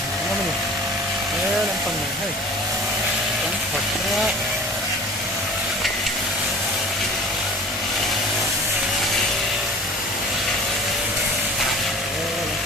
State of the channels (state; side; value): normal; both; correlation 0.42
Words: nó mình làm phần này hay cắn thật ra